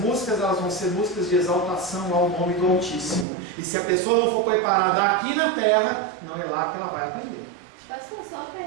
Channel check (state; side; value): drops out; left; at 3.2 s